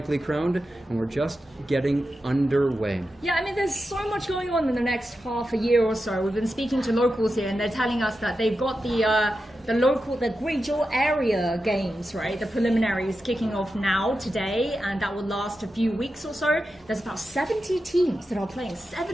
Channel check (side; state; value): both; normal; correlation 0.90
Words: crowned, and we're just getting underway. Yeah, I mean, there's so much going on in the next half a year or so. We've been speaking to locals here, and they're telling us that they've got the Guizhou area games, right? The preliminaries kicking off now, today, and that will last a few weeks or so. There's about 70 teams that are playing,